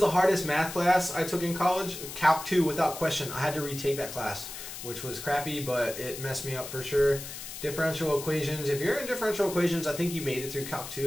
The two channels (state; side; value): noise; left; hiss, 10 dB below the sound